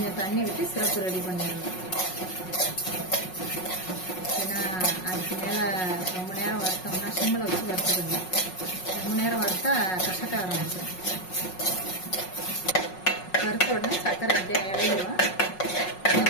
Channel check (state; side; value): late; right; 5.5 ms